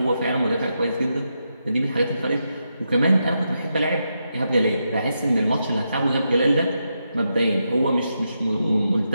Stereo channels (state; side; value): inverted; both; correlation -0.84